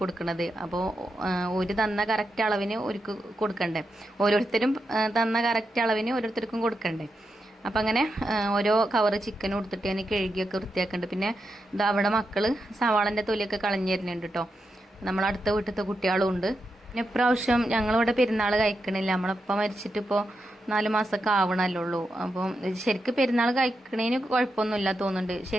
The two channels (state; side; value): normal; both; correlation 0.86